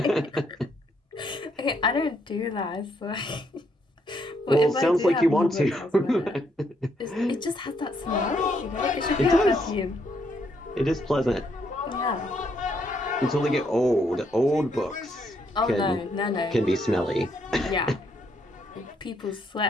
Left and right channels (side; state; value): both; normal; correlation 0.73